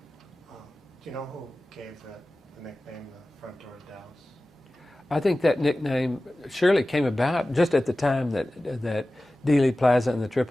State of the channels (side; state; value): both; normal; correlation 0.96